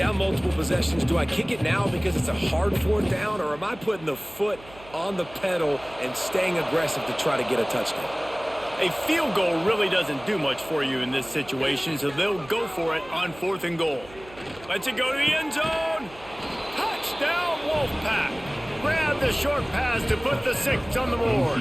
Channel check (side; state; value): right; noise; hum, 20 dB below the sound